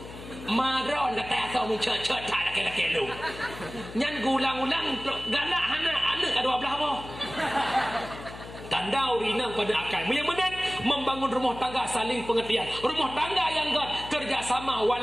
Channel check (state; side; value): noise; left; hum, 14 dB below the sound